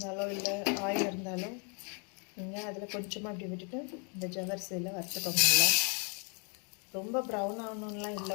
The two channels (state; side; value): quieter; right; 37.4 dB